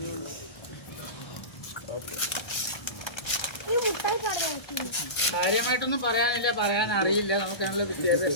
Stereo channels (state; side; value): late; right; 1.6 ms